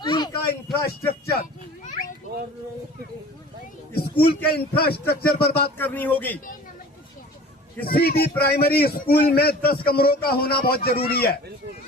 का इंफ्रास्ट्रक्चर। स्कूल के इंफ्रास्ट्रक्चर पर बात करनी होगी। किसी भी प्राइमरी स्कूल में 10 कमरों का होना बहुत जरूरी है,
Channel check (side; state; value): both; normal; correlation 0.43